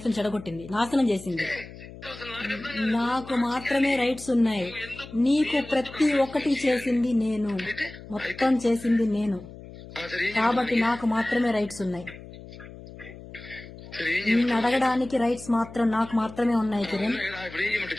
ని చెడగొట్టింది, నాశనం చేసింది. నాకు మాత్రమే రైట్స్ ఉన్నాయి, నీకు ప్రతి ఒక్కటి చేసింది నేను, మొత్తం చేసింది నేను, కాబట్టి నాకు మాత్రమే రైట్స్ ఉన్నాయి. నిన్ను అడగడానికి రైట్స్ మాత్రం నాకు మాత్రమే ఉన్నాయి. కిరణ్,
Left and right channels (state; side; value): noise; left; hum, 16 dB below the sound